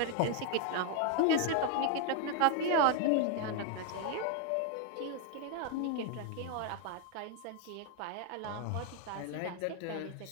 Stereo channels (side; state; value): both; different; correlation 0.00